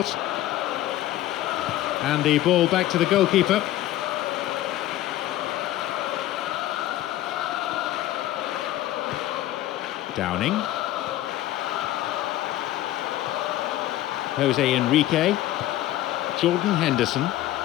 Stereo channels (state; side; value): quieter; right; 14.4 dB